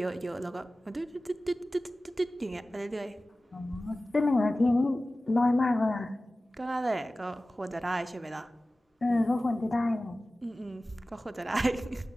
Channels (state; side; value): normal; both; correlation 0.96